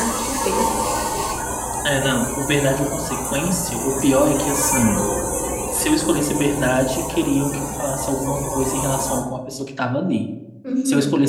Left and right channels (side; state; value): both; identical; correlation 1.00